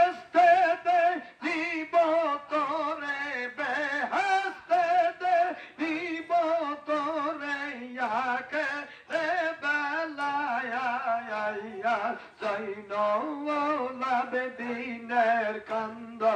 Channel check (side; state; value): both; identical; correlation 1.00